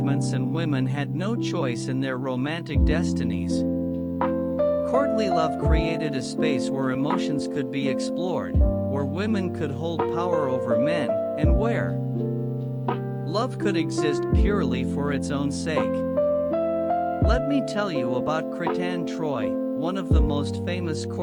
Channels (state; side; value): identical; both; correlation 1.00